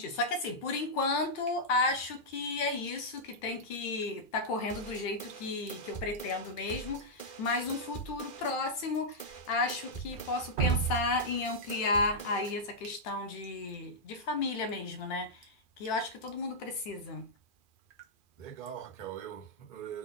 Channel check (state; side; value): late; right; 2.4 ms